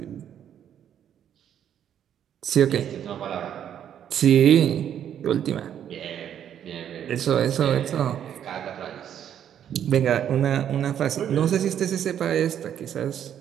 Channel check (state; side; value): quieter; left; 9.7 dB